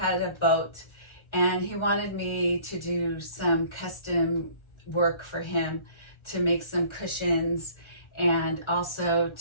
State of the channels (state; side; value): late; right; 1.3 ms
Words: a boat, and he wanted me to do some custom work for him to make some cushions and also